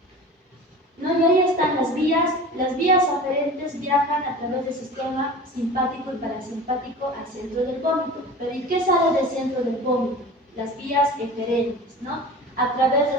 ¿no? Y ahí están las vías. Las vías aferentes viajan a través del sistema simpático y parasimpático al centro del vómito. Pero ¿y qué sale del centro del vómito? Las vías eferentes, ¿no? A través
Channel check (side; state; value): both; normal; correlation 0.37